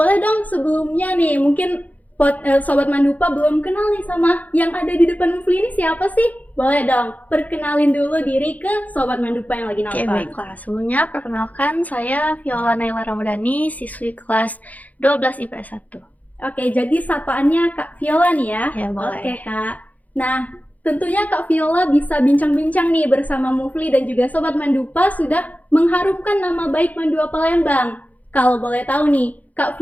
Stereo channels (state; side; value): late; right; 0.077 ms